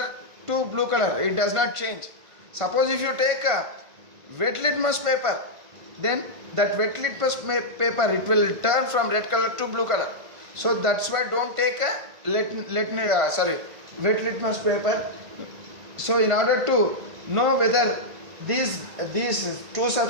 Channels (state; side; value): late; left; 1.5 ms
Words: to blue color, it does not change. Suppose if you take a wet litmus paper, then that wet litmus paper, it will turn from red color to blue color. So that's why don't take a wet litmus paper. So in order to know whether these two